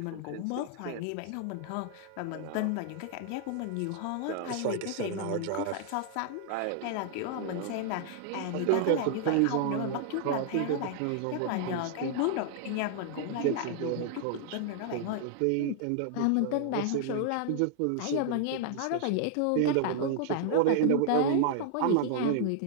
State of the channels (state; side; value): different; both; correlation 0.00